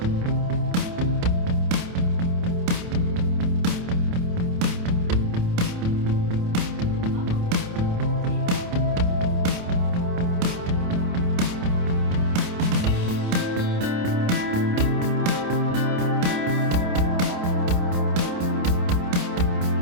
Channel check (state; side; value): late; left; 28 ms